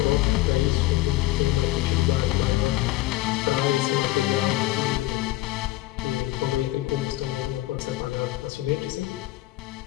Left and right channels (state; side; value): quieter; right; 17.1 dB